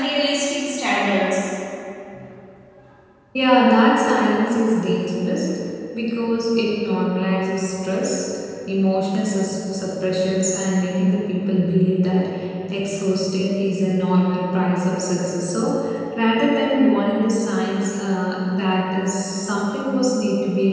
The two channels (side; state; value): both; identical; correlation 1.00